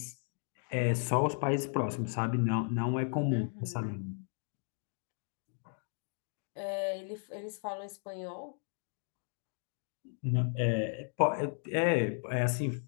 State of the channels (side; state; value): right; silent; 54 dB below the other